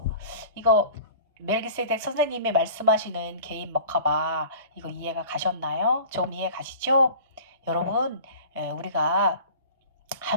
이거 멜기세덱 선생님이 말씀하시는 개인 먹하바 이거 이해가 가셨나요? 좀 이해 가시죠? 여러분 우리가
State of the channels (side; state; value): both; inverted; correlation -0.42